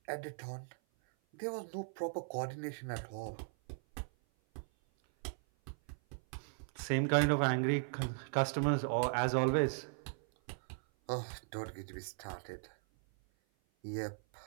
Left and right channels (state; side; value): silent; left; 53 dB below the other